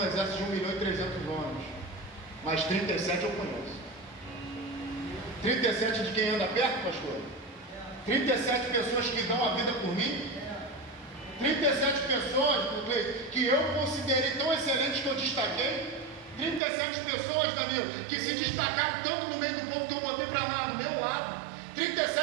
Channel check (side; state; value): left; drops out; at 16.6 s